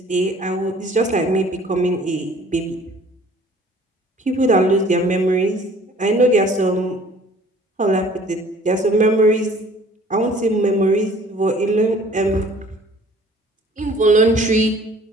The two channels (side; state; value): both; normal; correlation 0.52